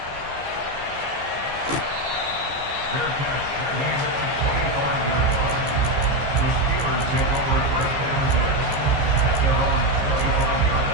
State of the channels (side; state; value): left; late; 15 ms